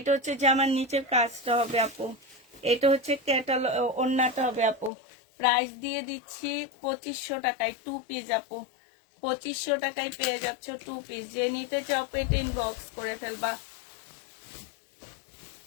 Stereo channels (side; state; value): right; drops out; at 4.9 s